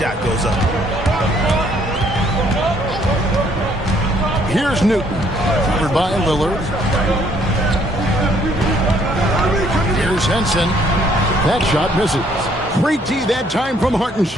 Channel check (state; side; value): normal; both; correlation 0.65